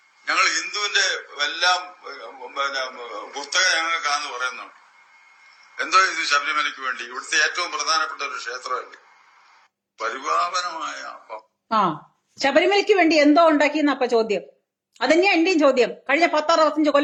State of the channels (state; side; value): identical; both; correlation 1.00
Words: ഞങ്ങൾ ഹിന്ദുവിന്റെ എല്ലാം പുസ്തകം ഞങ്ങൾക്കാന്ന് പറയുന്നുണ്ട്. എന്തോ ഇത് ശബരിമലയ്ക്ക് വേണ്ടി ഇവിടുത്തെ ഏറ്റവും പ്രധാനപ്പെട്ട ഒരു ക്ഷേത്രമല്ലേ, പരിപാവനമായ. ശബരിമലയ്ക്ക് വേണ്ടി എന്തോ ഉണ്ടാക്കിയെന്ന അപ്പൊ ചോദ്യം. അതന്നെയാ എന്റെയും ചോദ്യം. കഴിഞ്ഞ 10-65